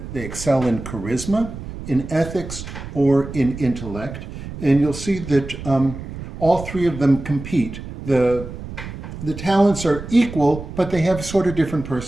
excel in charisma, in ethics, or in intellect. And you'll see that all three of them compete. The talents are equal, but they have sort of different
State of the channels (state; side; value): noise; right; rumble, 10 dB below the sound